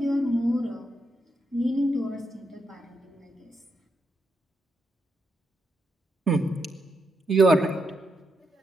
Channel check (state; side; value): normal; both; correlation 0.82